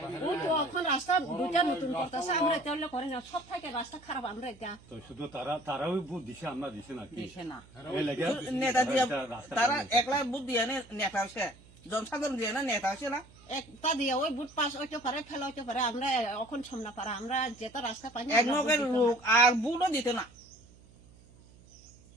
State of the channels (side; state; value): right; noise; hum, 24 dB below the sound